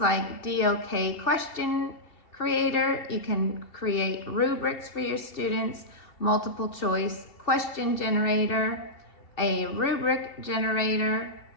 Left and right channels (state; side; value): late; right; 2.7 ms